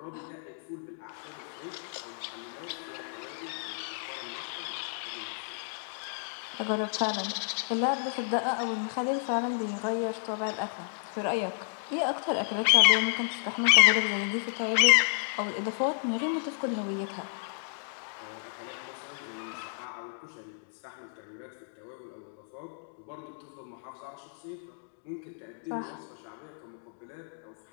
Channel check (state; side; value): silent; right; digital silence